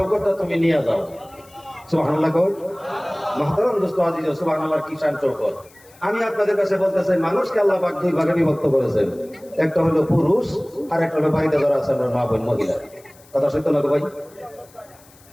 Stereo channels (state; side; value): noise; left; hiss, 27 dB below the sound